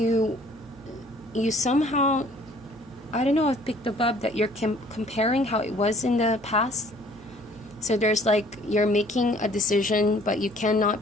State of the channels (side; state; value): right; noise; hum, 23 dB below the sound